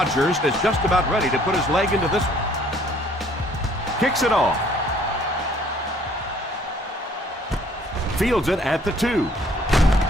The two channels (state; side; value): normal; both; correlation 0.59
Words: is just about ready to put his leg into this one. Kicks it off. Fields it at the 2.